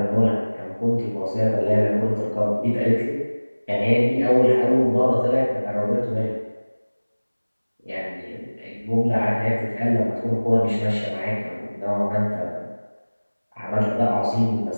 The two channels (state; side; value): inverted; both; correlation -1.00